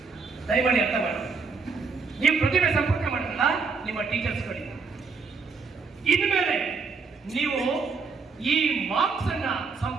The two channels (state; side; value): quieter; left; 4.9 dB